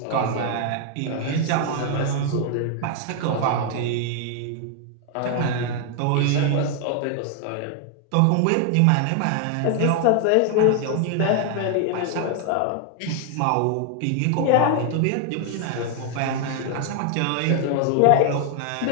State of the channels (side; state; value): both; different; correlation 0.00